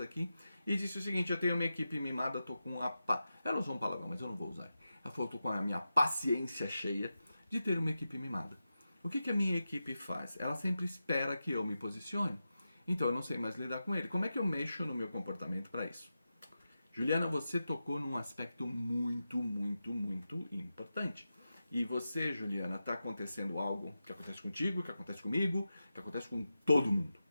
e disse o seguinte: eu tenho uma equipe mimada, tô com a ela usou um palavrão, mas eu não vou usar. Ela falou: tô com a minha paciência cheia de ter uma equipe mimada. O que a minha equipe faz? Ela sempre espera que eu me posicione. Então eu não sei mais lidar com ele. Como é que eu mexo no meu comportamento para isso? Juliana, você tocou num aspecto muito importante. E você, Juliana, está acontecendo algo que acontece contigo, que acontece comigo, que acontece com todo mundo.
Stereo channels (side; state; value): both; inverted; correlation -0.91